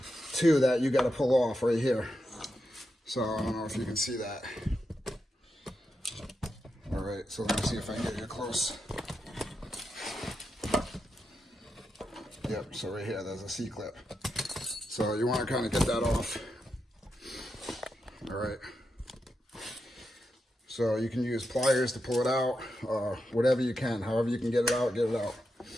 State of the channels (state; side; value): normal; both; correlation 0.86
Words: too that you got to pull off right here. So I don't know if you can see that. All right, so let me see if I can get you close. Yep, so right here, there's a C-clip. So you want to kind of get that off. All right. So you can use pliers to pull it out, whatever you can, however you can get it out, get it out.